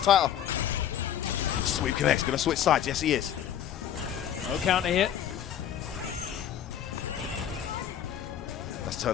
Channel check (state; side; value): quieter; right; 10.1 dB